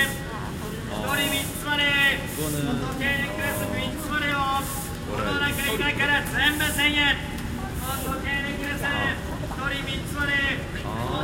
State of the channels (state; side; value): identical; both; correlation 1.00